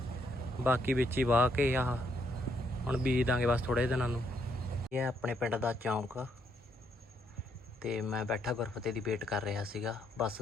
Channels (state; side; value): normal; both; correlation 0.73